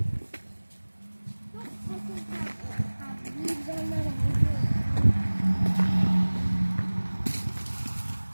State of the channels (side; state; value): both; inverted; correlation -1.00